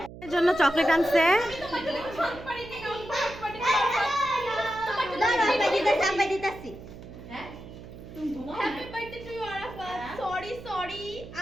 জন্য চকলেট আনছে।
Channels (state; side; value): noise; right; hum, 15 dB below the sound